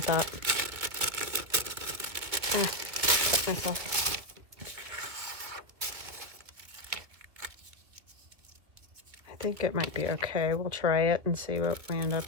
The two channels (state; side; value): late; left; 2.1 ms